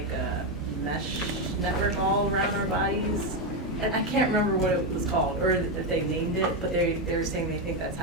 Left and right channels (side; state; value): both; normal; correlation 0.07